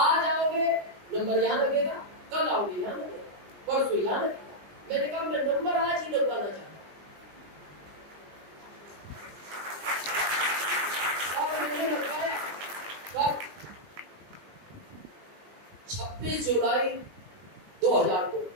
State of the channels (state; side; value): late; left; 20 ms